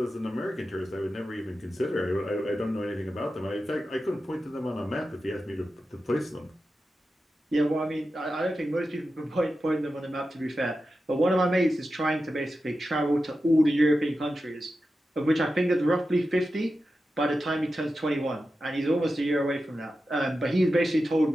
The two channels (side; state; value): both; normal; correlation 0.91